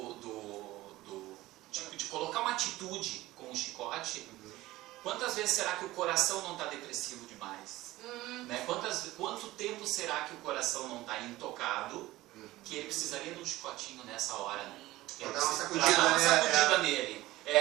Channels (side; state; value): left; quieter; 17.5 dB